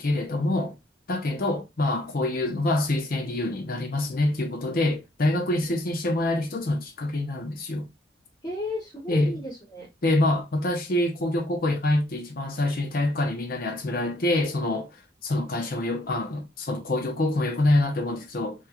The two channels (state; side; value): normal; both; correlation 0.67